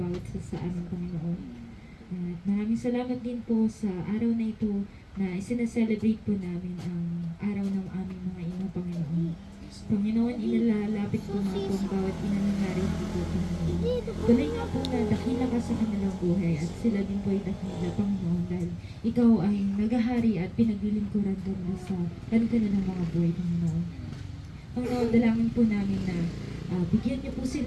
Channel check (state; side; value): identical; both; correlation 1.00